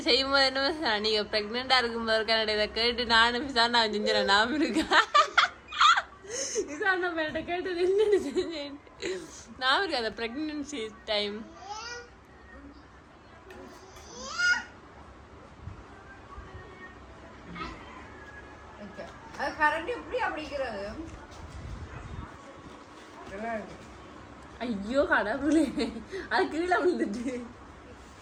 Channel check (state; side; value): identical; both; correlation 1.00